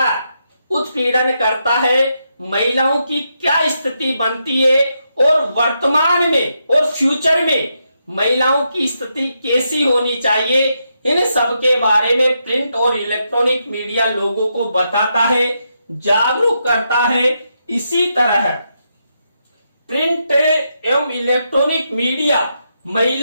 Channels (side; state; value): both; inverted; correlation -0.82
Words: उत्पीड़न करता है, महिलाओं की क्या स्थिति बनती है और वर्तमान में और फ्यूचर में महिलाओं की स्थिति कैसी होनी चाहिए। इन सब के बारे में प्रिंट और इलेक्ट्रॉनिक मीडिया लोगों को बताता है, जागरूक करता है। इसी तरह प्रिंट एवं इलेक्ट्रॉनिक मीडिया